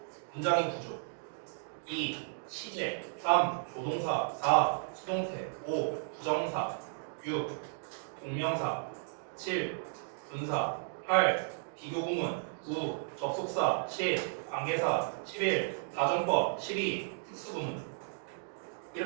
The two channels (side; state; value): left; silent; digital silence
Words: 문장의 구조, 2. 시제, 3. 조동사, 4. 수동태, 5. 부정사, 6. 동명사, 7. 분사, 8. 비교구문, 9. 접속사, 10. 관계사, 11. 가정법, 12. 특수구문.